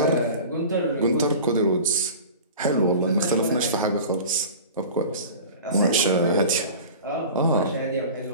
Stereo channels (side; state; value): both; inverted; correlation -0.37